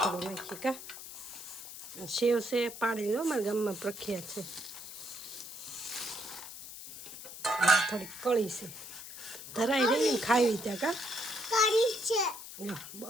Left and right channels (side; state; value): left; noise; hiss, 12 dB below the sound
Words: થોડું નાખીએ કા. સેવ છે પાડી લો, મારા ગામમાં પ્રખ્યાત છે. થોડીક કળી છે, ધરાઈ રહી ને ખાવી ત્યાં કા.